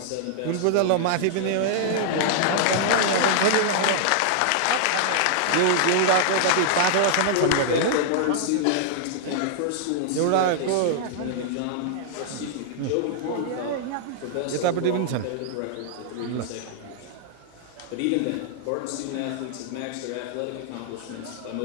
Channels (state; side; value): different; both; correlation -0.01